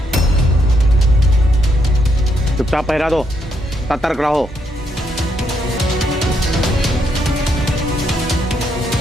चुपचाप पहरा दो, सतर्क रहो।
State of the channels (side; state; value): both; normal; correlation 0.76